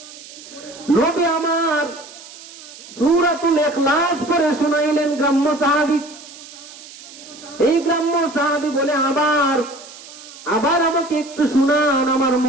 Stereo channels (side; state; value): right; noise; hiss, 17 dB below the sound